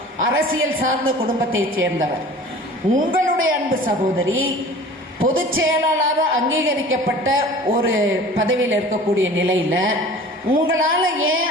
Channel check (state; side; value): normal; both; correlation 0.43